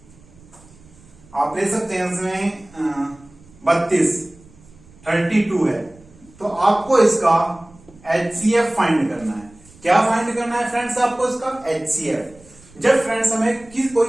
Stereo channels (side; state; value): right; noise; rumble, 25 dB below the sound